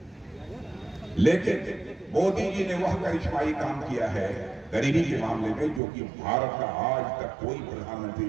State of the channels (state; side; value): drops out; left; at 5.8 s